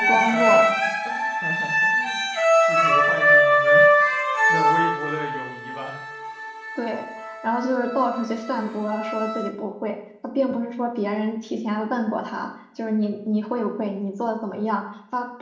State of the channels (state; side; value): identical; both; correlation 1.00